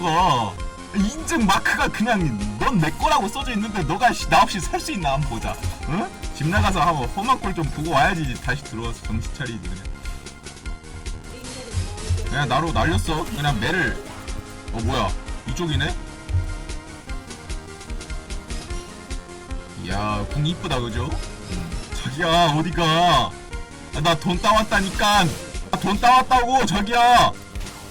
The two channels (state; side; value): identical; both; correlation 1.00